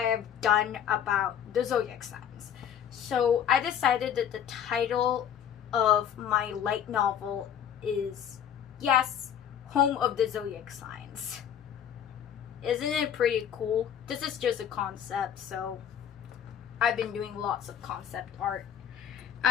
I've done about the Zodiac Signs. So I decided that the title of my light novel is, yes, Home of the Zodiac Signs. Isn't it pretty cool? This is just a concept, so I've been doing lots of concept art.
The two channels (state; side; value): quieter; right; 9.1 dB